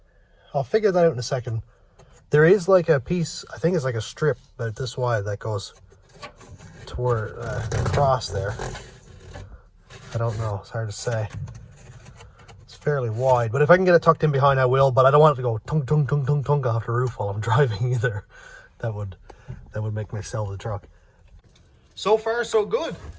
I'll figure that out in a second. There is like a piece, I think it's like a strip about this wide that goes toward across there. I don't know, it's hard to say. It's fairly wide, but if I can get it tucked in behind, I will, but I don't want it to go tung tung tung tung tung off the roof while I'm driving either. That would make me sell the truck. So far, so good.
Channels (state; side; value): identical; both; correlation 1.00